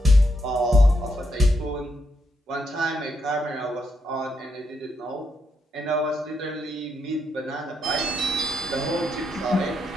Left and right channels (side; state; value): both; normal; correlation 0.79